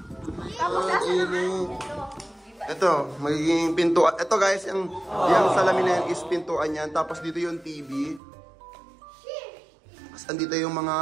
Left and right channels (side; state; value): left; drops out; at 8.2 s